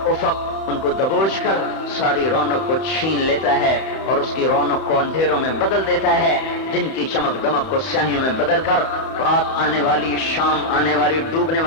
افق ان کو دبوچ کر ساری رونق کو چھین لیتا ہے اور اس کی رونق کو اندھیروں میں بدل دیتا ہے، دن کی چمک دمک کو سیاہیوں میں بدل کر رات آنے والی، شام آنے والی، ڈوبنے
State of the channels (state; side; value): late; right; 31 ms